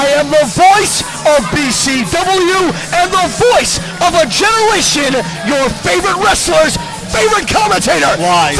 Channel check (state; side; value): identical; both; correlation 1.00